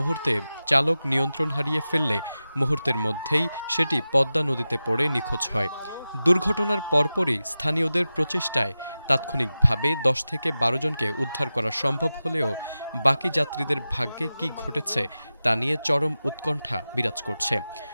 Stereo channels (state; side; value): inverted; both; correlation -0.94